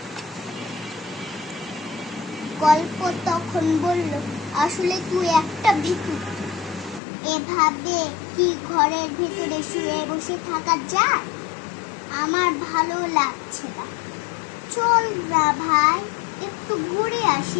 গল্প তখন বলল, আসলে তুই একটা ভিখারি, এভাবে কি ঘরের ভিতরে শুয়ে বসে থাকা যায়? আমার ভালো লাগছে না, চল না ভাই একটু ঘুরে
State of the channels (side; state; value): right; drops out; at 7.0 s